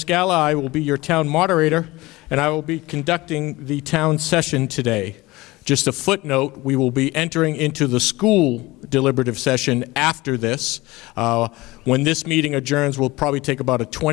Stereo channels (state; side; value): quieter; right; 20.5 dB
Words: I will be your town moderator, and I will be conducting the town session today. Just a footnote, we will be entering into the school deliberative session after this. When this meeting adjourns, we'll probably take about a